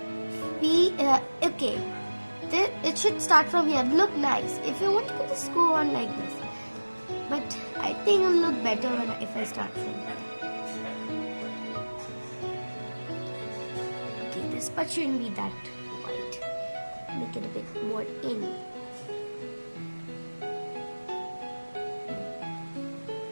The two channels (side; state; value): both; inverted; correlation -1.00